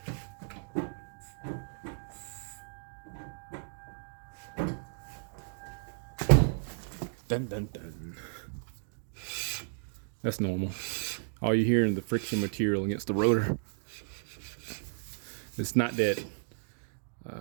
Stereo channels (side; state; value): left; silent; digital silence